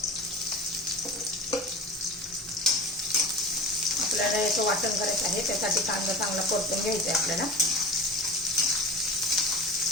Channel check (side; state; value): both; normal; correlation 0.31